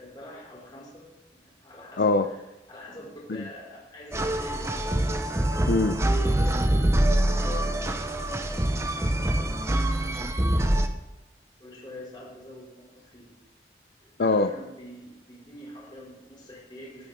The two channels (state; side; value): normal; both; correlation 0.71